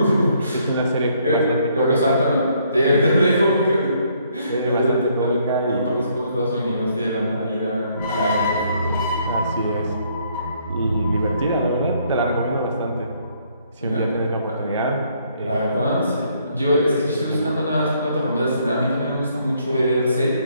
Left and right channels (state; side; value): inverted; both; correlation -0.68